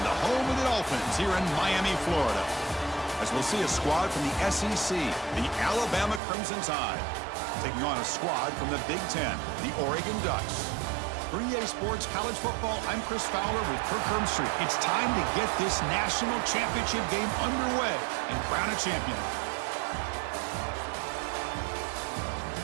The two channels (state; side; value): drops out; left; at 6.2 s